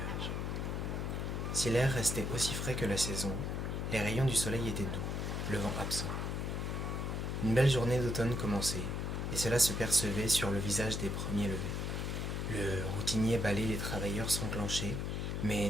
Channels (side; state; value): left; noise; hum, 1 dB below the sound